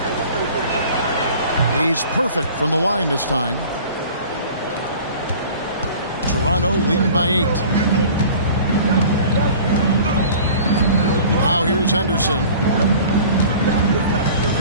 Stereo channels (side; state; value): both; inverted; correlation -0.44